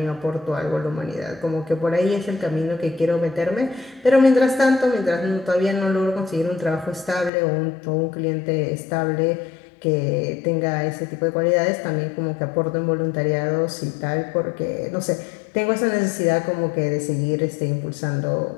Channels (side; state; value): right; drops out; at 7.3 s